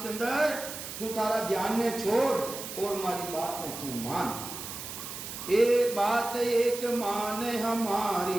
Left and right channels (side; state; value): right; noise; hiss, 9 dB below the sound